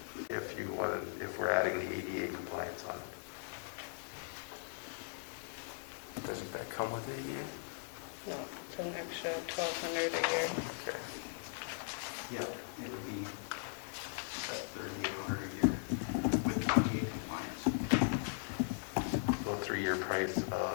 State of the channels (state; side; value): silent; right; digital silence